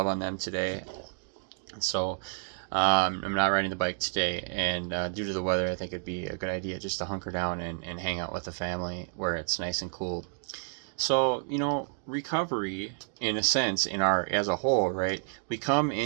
on them today. And so I'm not riding the bike today, and due to the weather, I think it'd be a good idea just to hunker down and hang out with the family where it's nice and cool. So, recovery, in a sense, as a whole, right? We come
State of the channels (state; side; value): silent; left; 58 dB below the other